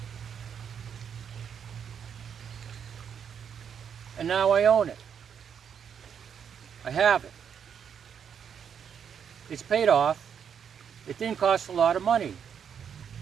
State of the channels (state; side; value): quieter; left; 7.7 dB